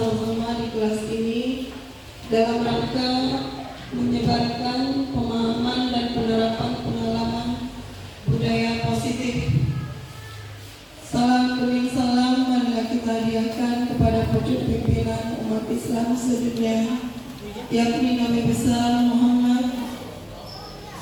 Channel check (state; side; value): identical; both; correlation 1.00